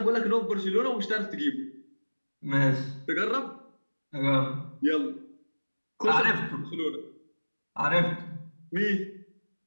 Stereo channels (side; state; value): both; inverted; correlation -1.00